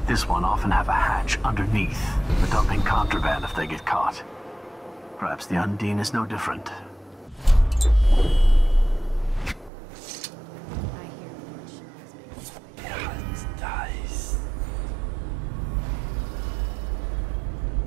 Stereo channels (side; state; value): left; drops out; at 9.7 s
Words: this one often have a hatch underneath for dumping contraband if they get caught. Perhaps the Undine is no different.